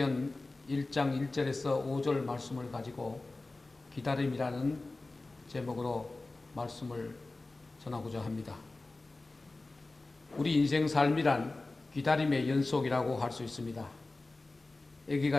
1장 1절에서 5절 말씀을 가지고 기다림이라는 제목으로 말씀을 전하고자 합니다. 우리 인생 삶이란 기다림의 연속이라고 할 수 있습니다.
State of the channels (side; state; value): right; quieter; 3.2 dB